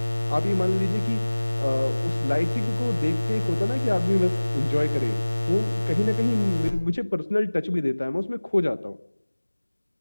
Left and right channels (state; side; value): inverted; both; correlation -1.00